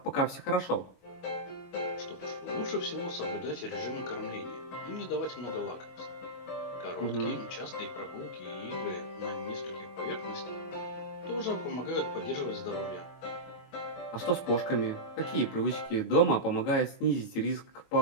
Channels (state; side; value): late; right; 22 ms